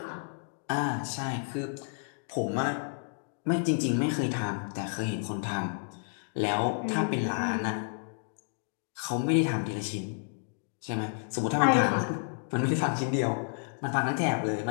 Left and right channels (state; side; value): silent; right; 57 dB below the other